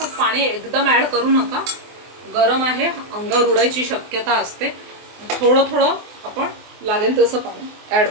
पाणी एकदम ॲड करू नका, गरम आहे, अंगावर उडायची शक्यता असते। थोडं थोडं आपण लागेल तसं पाणी ॲड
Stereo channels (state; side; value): late; left; 24 ms